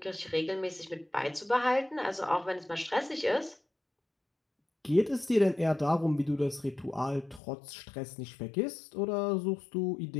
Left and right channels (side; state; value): right; drops out; at 7.4 s